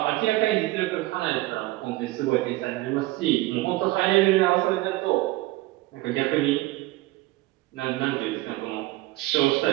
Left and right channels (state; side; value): quieter; left; 18.9 dB